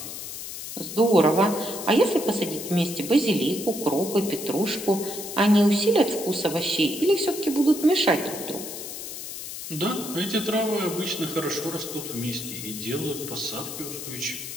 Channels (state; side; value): noise; left; hiss, 9 dB below the sound